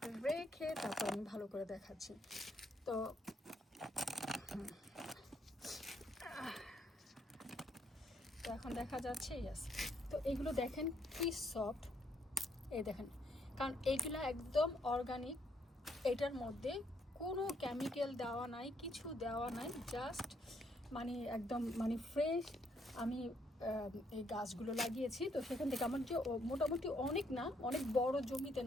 রেখে তারপর আমি ভালো করে দেখাচ্ছি। তো এখন দেখা যাচ্ছে, ইয়াস। তো এগুলো দেখেন কি সফট, এই দেখেন, কারণ এইগুলো একদম অর্গানিক। এটার মধ্যে কোনো কেমিক্যাল দেওয়া নাই, কিছু দেওয়া নাই, জাস্ট মানে একদম মানে ফ্রেশ। আমি এই গাছগুলো লাগিয়েছি, তো সেখান থেকে আমার যে মোটামুটি অনেক না, অনেক বড় জমিতে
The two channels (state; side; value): normal; both; correlation 0.72